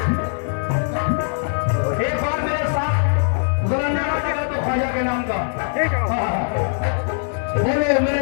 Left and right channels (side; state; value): right; silent; digital silence